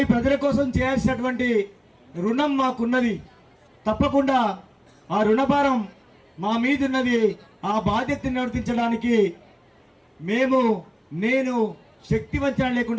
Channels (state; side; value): identical; both; correlation 1.00